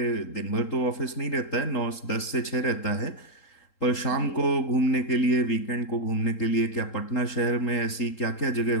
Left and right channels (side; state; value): right; late; 3.8 ms